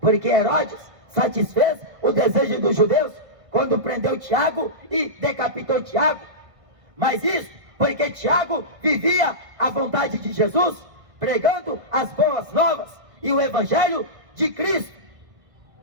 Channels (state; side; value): late; left; 1.5 ms